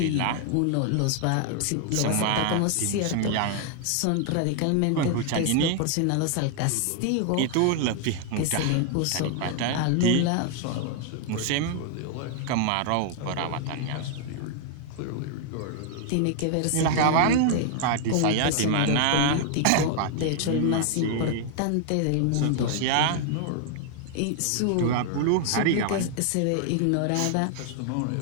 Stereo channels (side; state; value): both; different; correlation 0.00